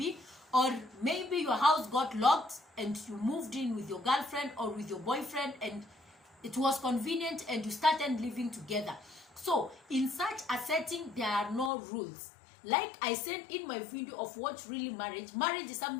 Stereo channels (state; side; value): drops out; right; at 11.7 s